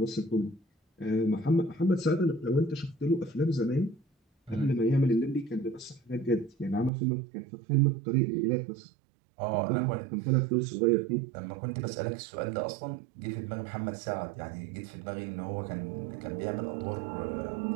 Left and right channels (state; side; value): drops out; left; at 6.9 s